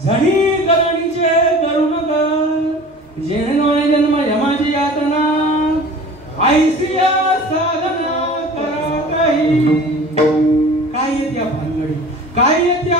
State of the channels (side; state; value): both; normal; correlation 0.42